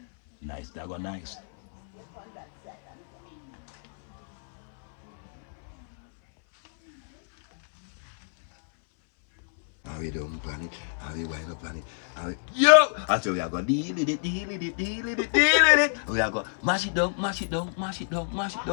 nice, that go nice. How we don't plan it, how we wind up plan it, how we... Yo! I tell you, I go deal with it, deal with it, deal with it, deal with it. We are go mash it down, mash it down, mash it down, mash it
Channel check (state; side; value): silent; right; 60 dB below the other